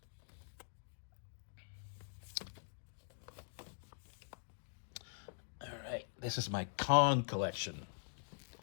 Alright, this is my Kong collection.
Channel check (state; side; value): silent; right; digital silence